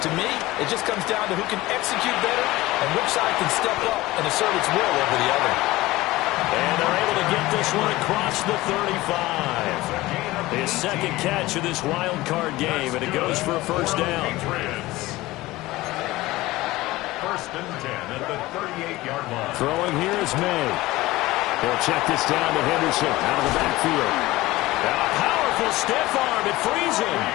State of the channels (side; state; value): right; quieter; 18.7 dB